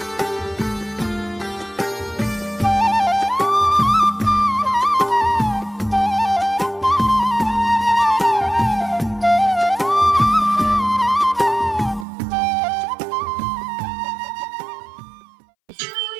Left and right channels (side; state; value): left; drops out; at 12.1 s